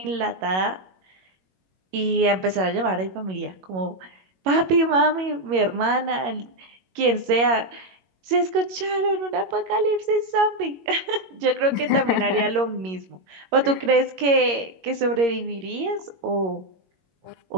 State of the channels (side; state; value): left; late; 21 ms